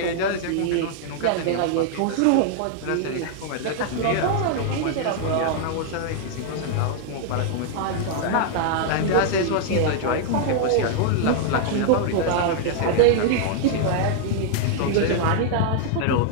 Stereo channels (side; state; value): both; different; correlation -0.01